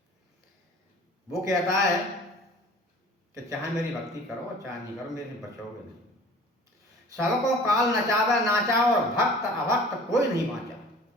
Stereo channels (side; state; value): both; normal; correlation 0.46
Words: वो कहता है कि चाहे मेरी भक्ति करो चाहे नहीं करो, मेरे से बचोगे नहीं। सबको काल नचावे नाचा, और भक्त अभक्त कोई नहीं बांचा।